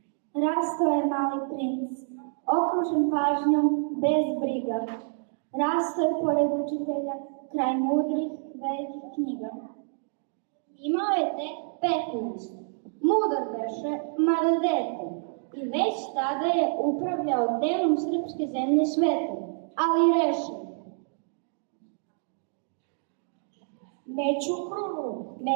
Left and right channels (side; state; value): left; silent; 59 dB below the other